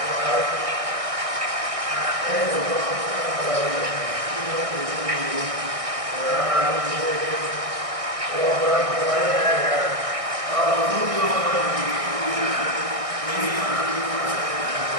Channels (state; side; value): late; left; 1.6 ms